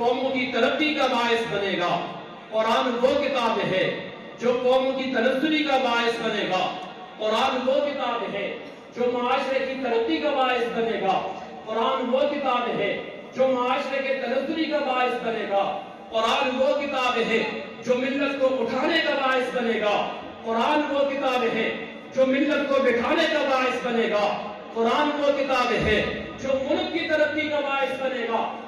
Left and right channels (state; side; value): identical; both; correlation 1.00